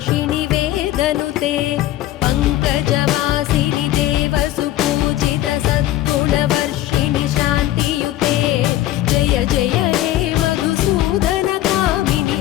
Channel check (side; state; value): right; quieter; 14.5 dB